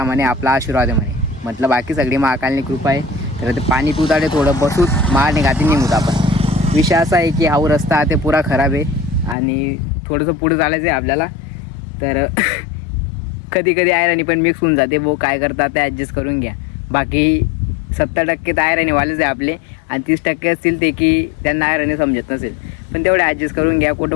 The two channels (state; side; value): drops out; right; at 9.3 s